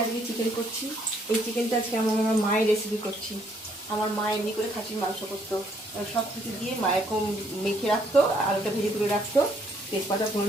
আজকে চিকেন করছি। এই চিকেনটা আজকে আমার মায়ের রেসিপি করছি। আমার মা এমনি করে খাসির মাংস করতো, সব কিছু দিয়ে মায়ের কম মেখে রাখতো, আলুটা ভেজে তুলে রাখতো, তেজপাতা ফোড়ন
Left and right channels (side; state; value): both; normal; correlation 0.68